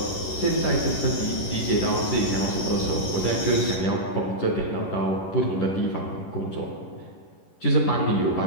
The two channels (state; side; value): late; right; 11 ms